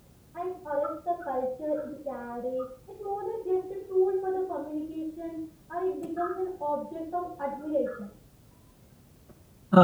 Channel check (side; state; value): both; identical; correlation 1.00